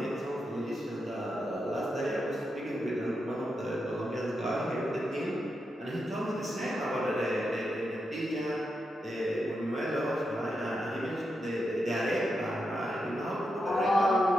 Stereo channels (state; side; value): normal; both; correlation 0.86